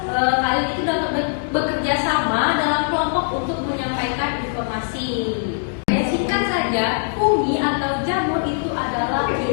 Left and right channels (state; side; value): silent; right; digital silence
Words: kalian itu dapat bekerja sama dalam kelompok untuk menyampaikan informasi. Singkat saja, fungi atau jamur itu adalah